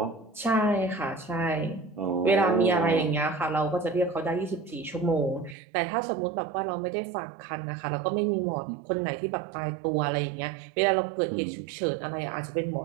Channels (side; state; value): left; drops out; at 5.6 s